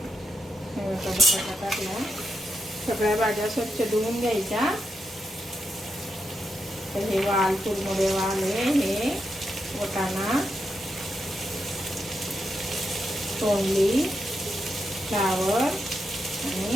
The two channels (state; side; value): normal; both; correlation 0.84